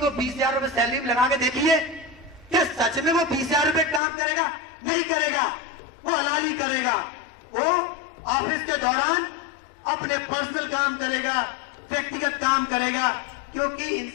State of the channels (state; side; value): drops out; right; at 4.0 s